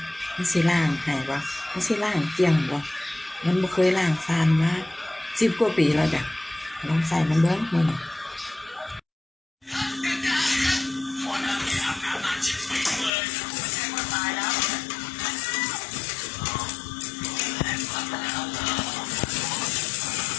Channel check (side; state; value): right; drops out; at 13.1 s